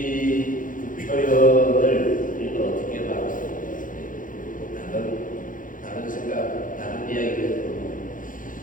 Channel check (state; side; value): late; right; 0.39 ms